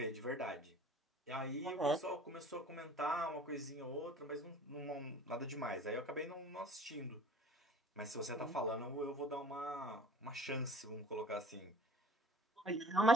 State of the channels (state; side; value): normal; both; correlation 0.47